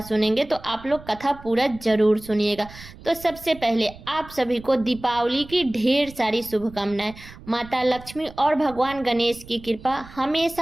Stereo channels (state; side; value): noise; right; rumble, 18 dB below the sound